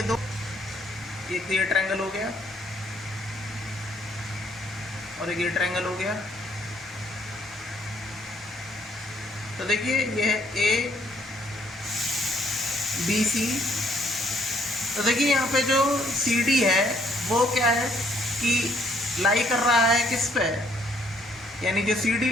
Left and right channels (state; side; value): normal; both; correlation 0.66